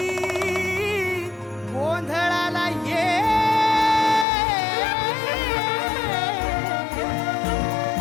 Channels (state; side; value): drops out; right; at 4.2 s